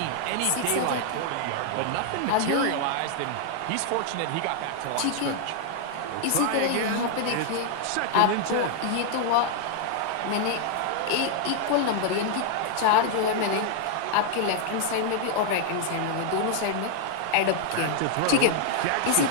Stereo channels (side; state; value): both; different; correlation 0.00